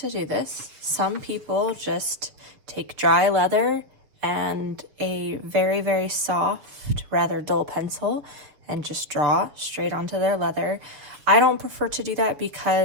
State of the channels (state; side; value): late; left; 7.1 ms